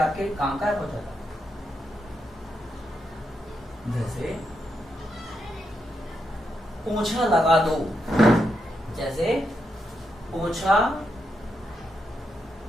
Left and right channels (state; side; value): normal; both; correlation 0.82